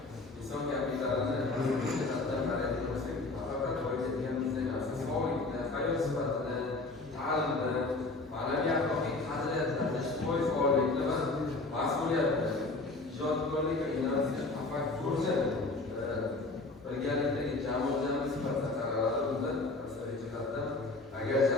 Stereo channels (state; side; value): quieter; right; 3.3 dB